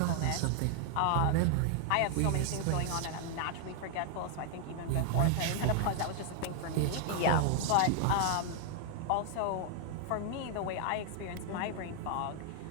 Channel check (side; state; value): both; different; correlation 0.00